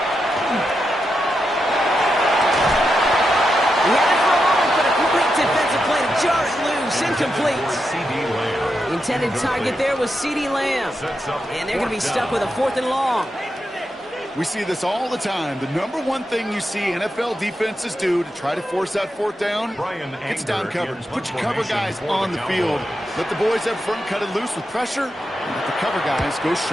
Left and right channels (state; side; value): normal; both; correlation 0.86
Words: He had it for a moment, but a complete defensive play to jar it loose, incomplete. The intended target there was CeeDee Lamb, and they're going to be stuck with a 4th and long. We see this all the time. The number one thing you see NFL defenses do to try to force that 4th down, it's down coverage. Put your cover guys on the field. Let the boys up front cut it loose with pressure, and let the cover guys go